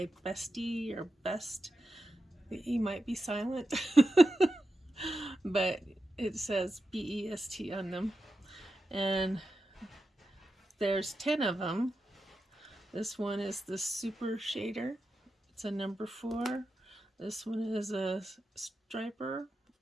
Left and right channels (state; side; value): normal; both; correlation 0.90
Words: Beste or Best. The E might be silent, but it says BEST on them. And there's 10 of them. This one is the Super Shader. It's a number 4. This one is a striper,